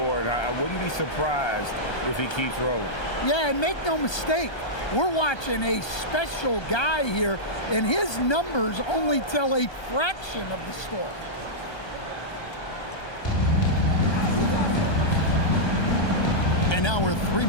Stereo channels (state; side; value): late; right; 1.3 ms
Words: I wouldn't be surprised if he keeps rolling. Yeah, and make no mistake, we're watching a special guy here, and his numbers only tell a fraction of the story. And now we're 3